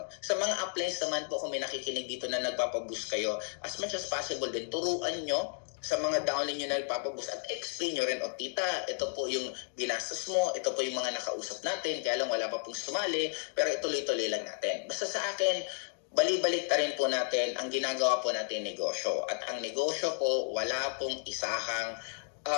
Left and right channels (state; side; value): silent; right; 56 dB below the other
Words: Sa mga uplines naman po, kung may nakikinig dito na nagpapaboost kayo, as much as possible din, turuan nyo sa mga downline nyo na nagpapaboost at explain nyo rin, o tita, ito po yung ginastos mo, ito po yung mga nakausap natin, kaya lang wala pa pong sumali, pero ituloy-tuloy lang natin. Basta sa akin, balik-balik ta rin po natin ang ginagawa po natin negosyo. At ang negosyo po, wala pong isahang